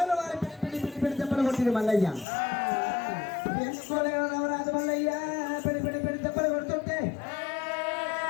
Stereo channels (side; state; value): right; drops out; at 2.2 s